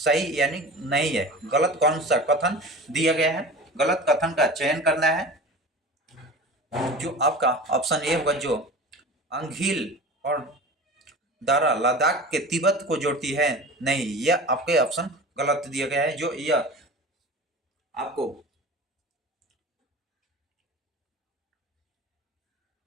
यानी नहीं है, गलत कौन सा कथन दिया गया है? गलत कथन का चयन करना है। जो आपका ऑप्शन ए होगा, जो अंगील और दारा लद्दाख के तिब्बत को जोड़ती है। नहीं, यह आपके ऑप्शन गलत दिया गया है। जो यह आपको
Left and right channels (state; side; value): normal; both; correlation 0.35